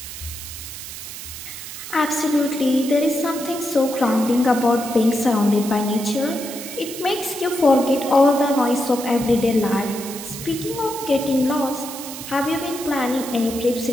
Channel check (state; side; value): noise; right; hiss, 10 dB below the sound